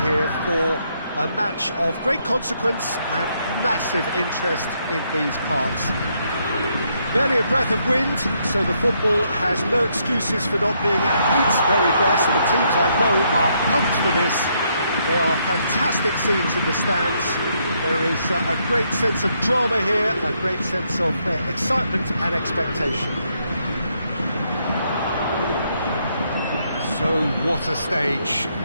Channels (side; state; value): both; inverted; correlation -0.74